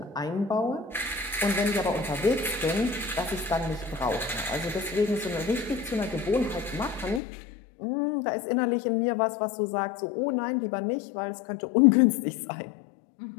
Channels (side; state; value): right; drops out; at 7.2 s